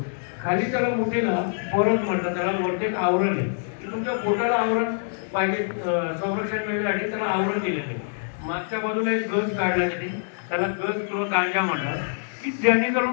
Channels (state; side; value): silent; right; digital silence